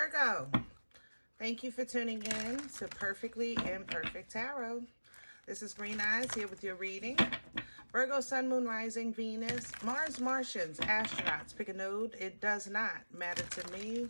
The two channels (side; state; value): both; inverted; correlation -1.00